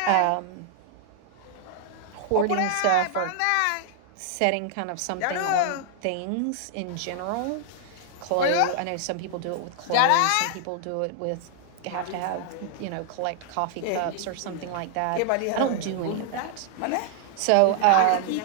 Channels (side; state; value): both; different; correlation -0.01